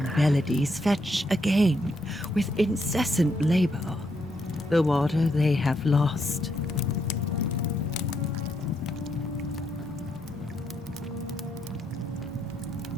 melodies fetch again with incessant labor the water they have lost.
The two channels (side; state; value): both; normal; correlation 0.77